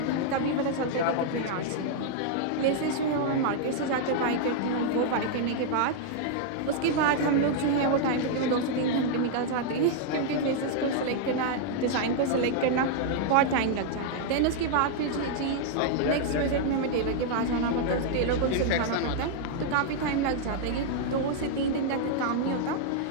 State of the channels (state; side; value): different; both; correlation -0.01